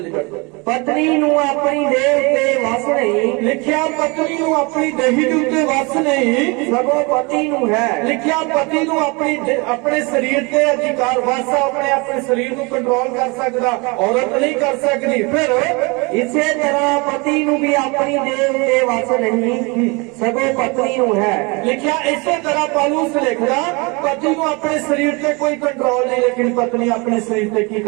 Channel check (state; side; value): quieter; left; 28.2 dB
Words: ਪੜ੍ਹੋ। ਪਤਨੀ ਨੂੰ ਆਪਣੀ ਦੇਹ ਉੱਤੇ ਵਸ ਨਹੀਂ, ਲਿਖਿਆ ਪਤਨੀ ਨੂੰ ਆਪਣੀ ਦੇਹੀ ਦੇ ਉੱਤੇ ਵਸ ਨਹੀਂ, ਸਗੋਂ ਪਤੀ ਨੂੰ ਹੈ। ਲਿਖਿਆ ਪਤੀ ਨੂੰ ਆਪਣੇ ਸਰੀਰ ਤੇ ਅਧਿਕਾਰ ਵਸ ਆ, ਆਪਣੇ ਸਰੀਰ ਨੂੰ ਕੰਟਰੋਲ ਕਰ ਸਕਦਾ, ਔਰਤ ਨਹੀਂ ਕਰ ਸਕਦੀ। ਫਿਰ ਇਸੇ ਤਰ੍ਹਾਂ ਪਤੀ ਨੂੰ ਵੀ ਆਪਣੀ ਦੇਹ ਉੱਤੇ ਵਸ ਨਹੀਂ, ਸਗੋਂ ਪਤਨੀ ਨੂੰ ਹੈ। ਲਿਖਿਆ ਇਸੇ ਤਰ੍ਹਾਂ ਪੌਲੁਸ ਲਿਖਦਾ ਪਤੀ ਨੂੰ ਆਪਣੇ ਸਰੀਰ ਤੇ ਕੋਈ ਕੰਟਰੋਲ ਨਹੀਂ, ਲੇਕਿਨ ਪਤਨੀ ਆਪਣੇ ਸਰੀਰ ਤੇ ਕੀ